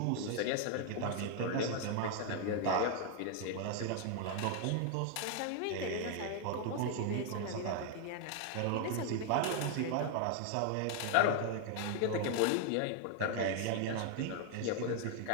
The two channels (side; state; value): both; different; correlation 0.00